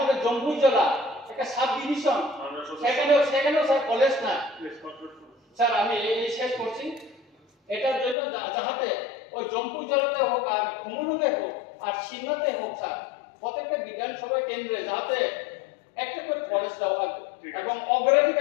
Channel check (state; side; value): drops out; right; at 8.2 s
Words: জম্মু জেলা একটা সাব ডিভিশন সেখানেও স্যার কলেজ না স্যার। আমি এই শেষ করছি, এটার জন্য যাহাতে ওই জম্মু জেলাতে হোক আর কুমুলুঙে হোক আর সিন্নাতে হোক স্যার, প্রত্যেকটা বিধানসভা কেন্দ্রে যাতে একটা করে কলেজ দেওয়া হয় এবং